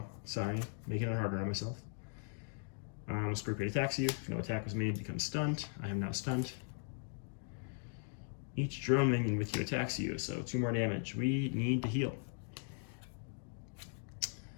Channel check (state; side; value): silent; right; 52 dB below the other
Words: sorry. Making it harder on myself. Scorpion attacks you. If no attack was made, becomes stunned. I am now stunned. Each drone minion with you attacks you, so 2 more damage. We need to heal.